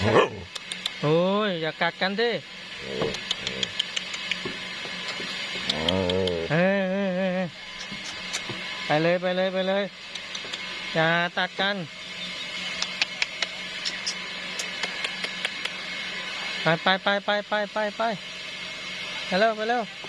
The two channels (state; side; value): identical; both; correlation 1.00